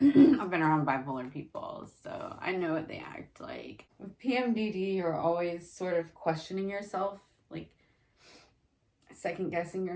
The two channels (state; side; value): identical; both; correlation 1.00